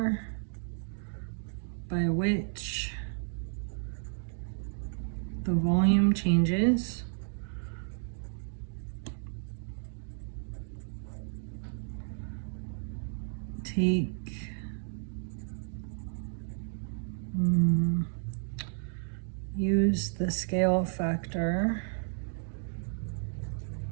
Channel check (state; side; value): silent; left; 56 dB below the other